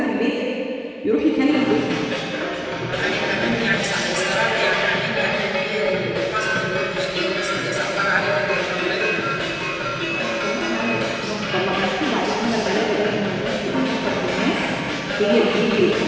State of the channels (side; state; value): both; identical; correlation 1.00